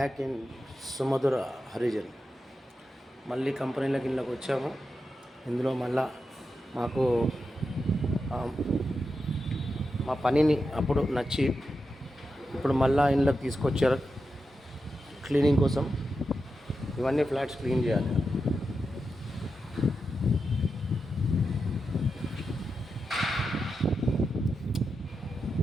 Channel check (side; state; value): both; normal; correlation 0.88